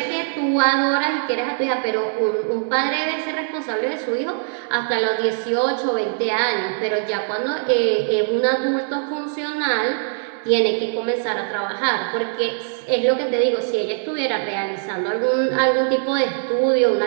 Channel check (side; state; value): left; silent; digital silence